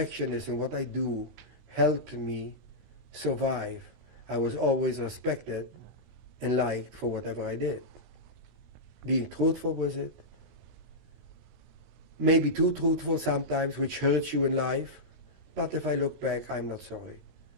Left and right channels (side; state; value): left; late; 16 ms